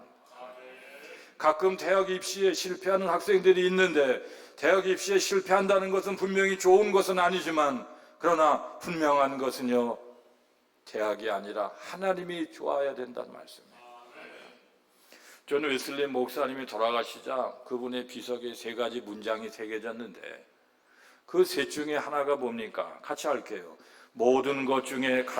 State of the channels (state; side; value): identical; both; correlation 1.00